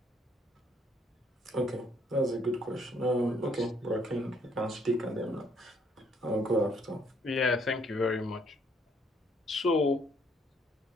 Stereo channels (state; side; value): normal; both; correlation 0.66